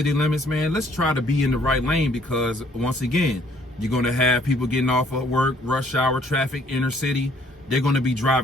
limits, man, let's try to be in the right lane, because once again, you're going to have people getting off of work, rush hour traffic, inner city. They're going to be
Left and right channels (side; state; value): both; normal; correlation 0.62